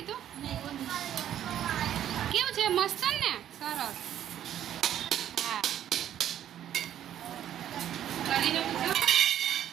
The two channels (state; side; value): quieter; left; 10.9 dB